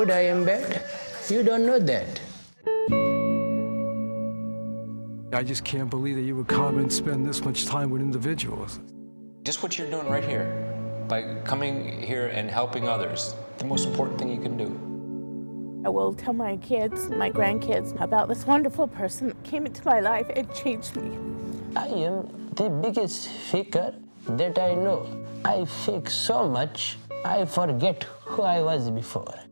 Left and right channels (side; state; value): both; inverted; correlation -1.00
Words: I am bad. You don't know that. I just can't believe that you would come and spend this much time with individuals. Just what you're doing right here, by coming here and helping others, the most important thing you can do. I will tell my kids, my grandkids, about this wonderful person that came into my life and changed me. I am the biggest faker that I know. I fake so much, I forget who I was before.